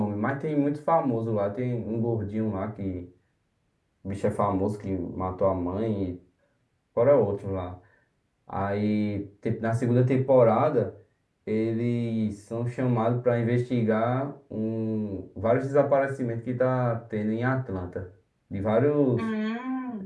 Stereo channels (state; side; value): identical; both; correlation 1.00